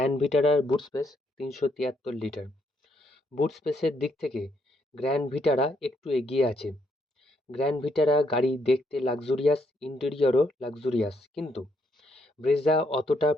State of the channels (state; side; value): normal; both; correlation 0.73